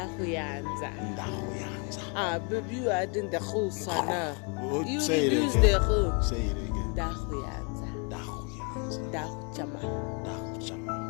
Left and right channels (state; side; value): quieter; right; 36.1 dB